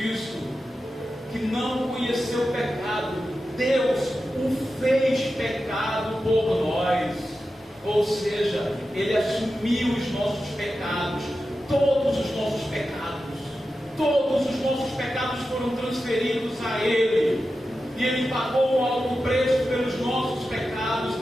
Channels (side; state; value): both; normal; correlation 0.91